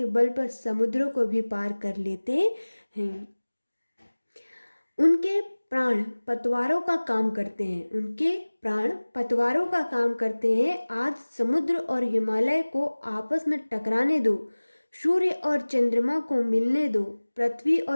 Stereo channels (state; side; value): inverted; both; correlation -1.00